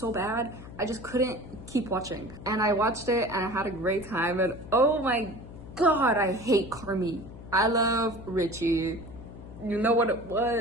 bad. I just couldn't keep watching, and I watched it and I had a great time. And oh my god, I hate Carmi. I love Richie. You know what it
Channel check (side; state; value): left; noise; hum, 15 dB below the sound